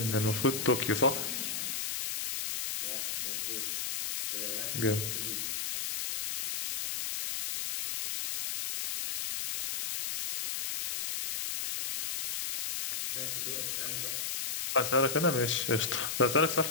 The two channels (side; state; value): left; noise; hiss, 2 dB below the sound